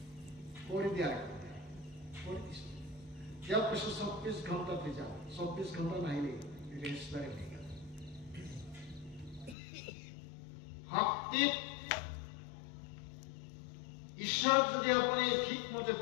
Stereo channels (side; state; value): right; drops out; at 9.6 s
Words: কৰি দিয়াৰ। কৰি দিছিল। তেওঁক কৈছো ২৪ ঘণ্টাতে যাওঁ। ২৪ ঘণ্টা নাহিলে ৰেজিষ্টাৰে হৈ গ'ল। ভক্তিত ঈশ্বৰক যদি আপুনি ঠিকমতে